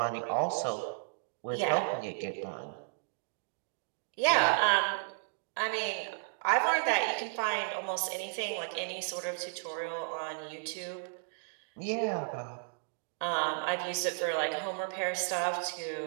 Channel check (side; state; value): left; silent; digital silence